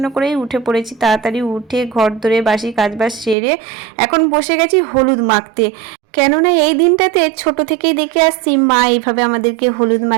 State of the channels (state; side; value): drops out; left; at 3.4 s